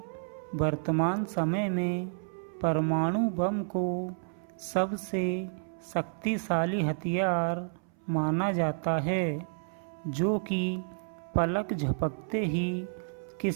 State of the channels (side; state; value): left; silent; 57 dB below the other